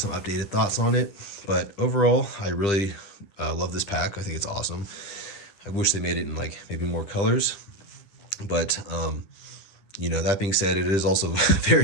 updated thoughts on it. But overall, I really love this pack. I think it's awesome. I wish they made it in like maybe more colors, but that being said, it is also very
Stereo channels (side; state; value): right; late; 10 ms